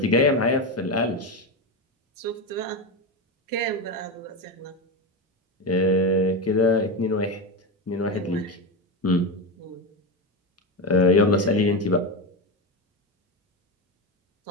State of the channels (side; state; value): both; normal; correlation 0.15